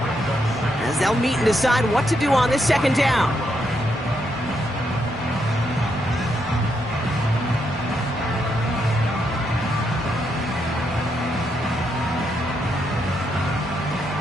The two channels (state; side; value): normal; both; correlation 0.79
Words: As they'll meet and decide what to do on this 2nd down.